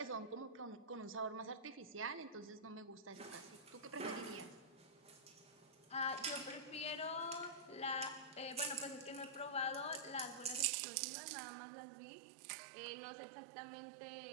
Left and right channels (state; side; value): drops out; left; at 10.7 s